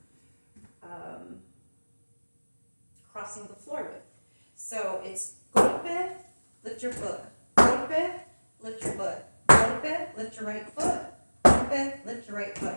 crossing the floor with. So it's golpe, lift your foot, golpe, lift your foot, golpe, lift your right foot, golpe, lift your right foot.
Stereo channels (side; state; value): both; inverted; correlation -1.00